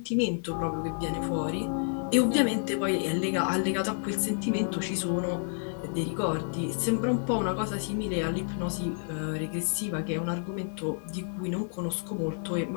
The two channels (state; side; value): silent; right; digital silence